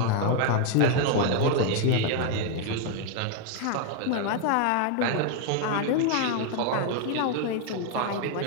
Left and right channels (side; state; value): both; different; correlation 0.01